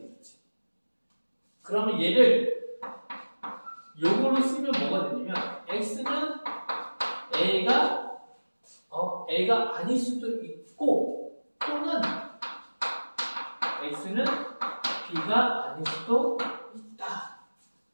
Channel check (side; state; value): both; inverted; correlation -1.00